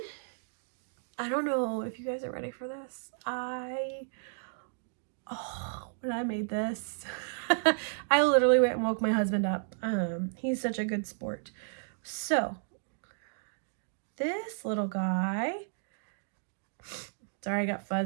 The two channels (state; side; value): silent; left; digital silence